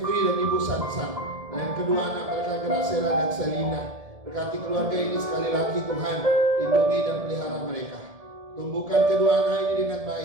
dan Ibu Sansan, dan kedua anak mereka Gracela dan Selina, berkati keluarga ini sekali lagi Tuhan, lindungi dan pelihara mereka. Tumbuhkan kedua anak ini dengan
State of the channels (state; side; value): late; left; 1.7 ms